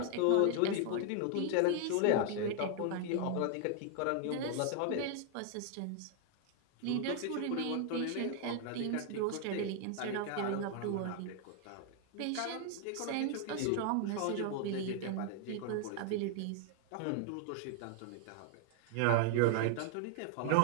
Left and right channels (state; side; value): different; both; correlation 0.00